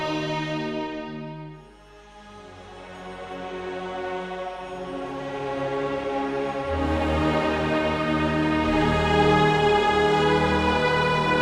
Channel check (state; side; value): identical; both; correlation 1.00